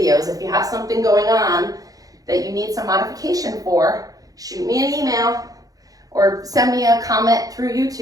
if you have something going on that you need some modification for, shoot me an email or send me a comment through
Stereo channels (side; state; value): left; late; 0.17 ms